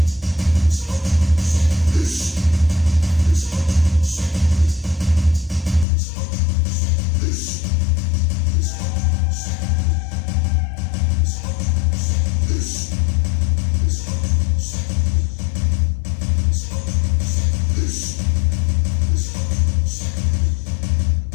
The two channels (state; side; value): drops out; right; at 5.9 s